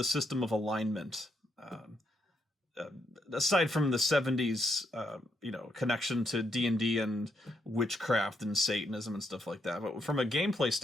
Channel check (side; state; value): both; normal; correlation 0.77